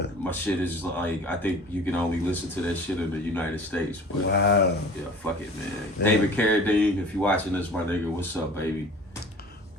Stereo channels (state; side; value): normal; both; correlation 0.43